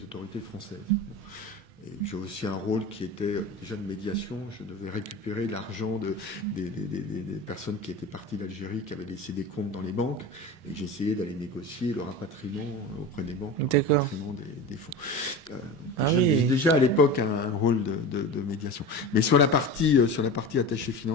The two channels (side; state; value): both; normal; correlation 0.30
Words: autorités françaises. Et j'ai aussi un rôle qui était déjà de médiation. Je devais récupérer l'argent des personnes qui étaient parties d'Algérie, qui avaient laissé des comptes dans les banques, et j'essayais d'aller négocier le rapatriement auprès des banques, le rapatriement des fonds. Donc déjà à l'époque un rôle de médiation. Mais sur la partie attaché